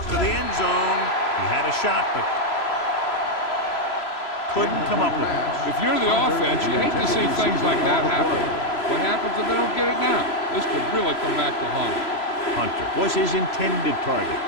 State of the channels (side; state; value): right; late; 3.0 ms